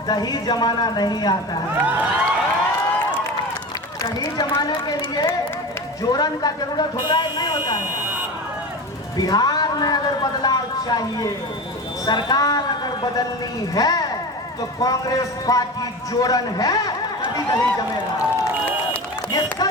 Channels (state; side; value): normal; both; correlation 0.28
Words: दही जमाना नहीं आता है। दही जमाने के लिए जोरन का जरूरत होता है, नहीं होता है। बिहार में अगर बदलाव चाहिए, सरकार अगर बदलनी है तो कांग्रेस पार्टी जोरन है, तभी दही जमेगा। ये